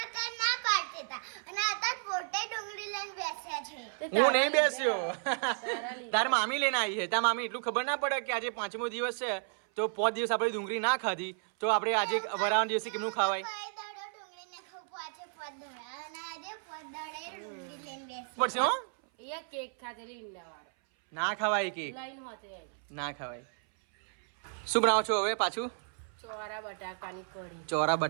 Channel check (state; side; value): silent; left; 56 dB below the other